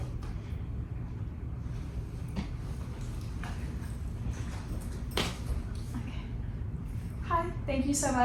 Okay. Hi, thank you so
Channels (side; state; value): both; identical; correlation 1.00